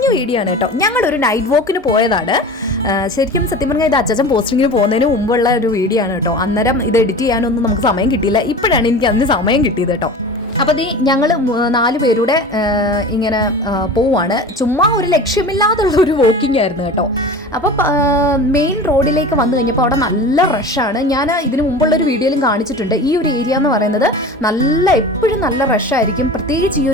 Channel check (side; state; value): both; normal; correlation 0.35